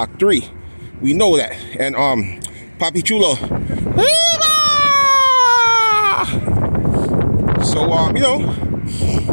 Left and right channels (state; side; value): inverted; both; correlation -1.00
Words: 3. We know that. And Papi Chulo. So